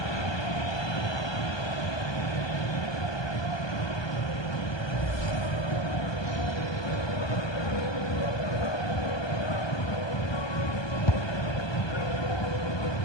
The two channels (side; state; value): right; late; 1.2 ms